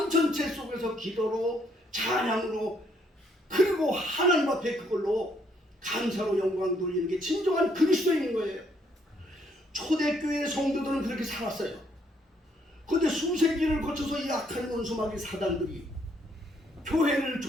전체 속에서 기도로 찬양으로 그리고 하나님 앞에 그걸로 감사로 영광 돌리는 게 진정한 그리스도인인 거예요. 초대교회 성도들은 그렇게 살았어요. 그런데 수세기를 거쳐서 이 악한 원수마귀 사단들이 교회를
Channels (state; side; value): normal; both; correlation 0.69